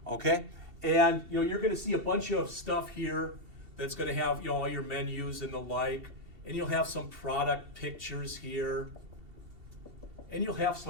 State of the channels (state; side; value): late; left; 2.7 ms